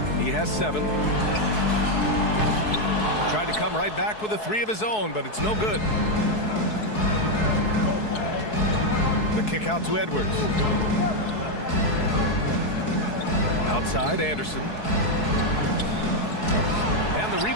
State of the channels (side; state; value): right; late; 4.7 ms